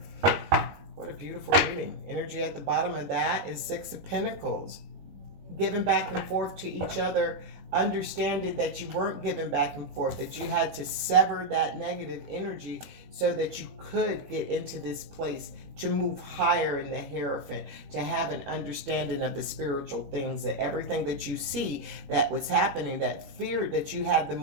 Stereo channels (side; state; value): left; late; 21 ms